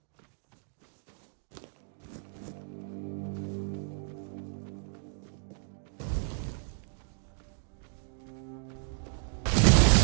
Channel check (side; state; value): left; silent; digital silence